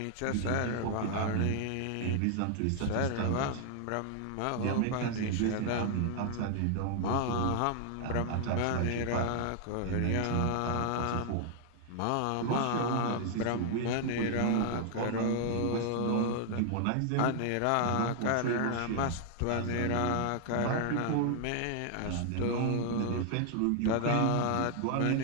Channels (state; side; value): different; both; correlation 0.00